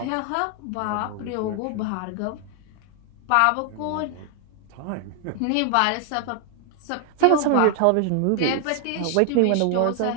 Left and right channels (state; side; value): different; both; correlation 0.00